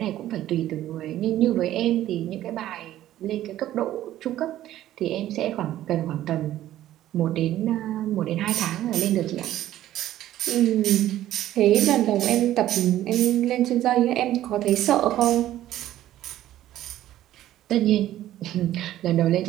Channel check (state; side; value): quieter; left; 13.4 dB